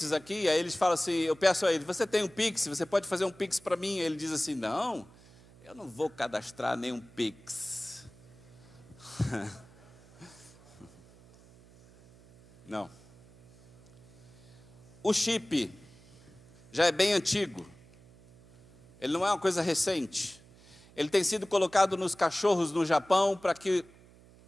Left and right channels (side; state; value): right; noise; hum, 24 dB below the sound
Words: aqui, aí eles falam assim, eu peço a ele, você tem um Pix, você pode fazer um Pix para mim? Ele diz assim, não, eu não vou cadastrar nenhum Pix. Não. O chip já é bem antigo, ele não é uma coisa recente. Ele tem sido colocado nos cachorros no Japão para que